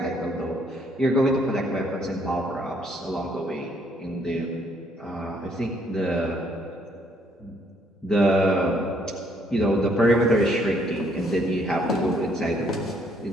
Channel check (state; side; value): normal; both; correlation 0.67